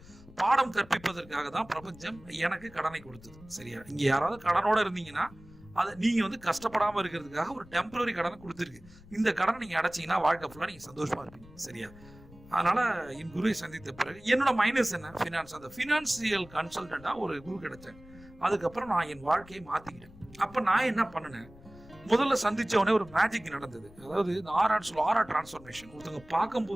பாடம் கற்பிப்பதற்காக தான் பிரபஞ்சம் எனக்கு கடனை கொடுத்தது, சரியா? இங்க யாராவது கடனோட இருந்தீங்கன்னா அதை நீங்க வந்து கஷ்டப்படாம இருக்கிறதுக்காக ஒரு டெம்பரரி கடனை கொடுத்துருக்கு. இந்த கடனை நீங்க அடைச்சீங்கன்னா வாழ்க்கை ஃபுல்லா நீங்க சந்தோஷமா இருப்பீங்க, சரியா? அதனால என் குருவை சந்தித்த பிறகு என்னோட மைனஸ் என்ன, ஃபினான்ஸ். அந்த ஃபினான்சியல் கன்சல்டண்டா ஒரு குரு கிடைச்சாங்க. அதுக்கப்புறம் நான் என் வாழ்க்கையை மாத்திக்கிட்டேன். அப்ப நான் என்ன பண்ணினேன், முதல்ல சந்திச்ச உடனே ஒரு மேஜிக் நடந்தது. அதாவது இந்த ஆரா டிரான்ஸ்ஃபர்மேஷன். ஒருத்தவங்க பார்க்கும்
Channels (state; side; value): noise; left; rumble, 21 dB below the sound